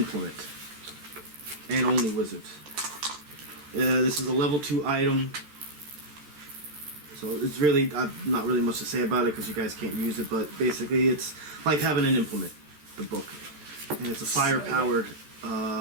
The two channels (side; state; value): left; late; 13 ms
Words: And only wizards. This is a level 2 item. So it's really, not really much to say about it because you guys can't use it, but basically it's like having an implement, the book. And it's a fire-powered